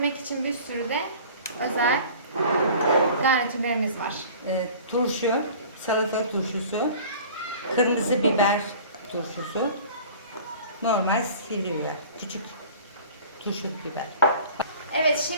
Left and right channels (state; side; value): inverted; both; correlation -0.44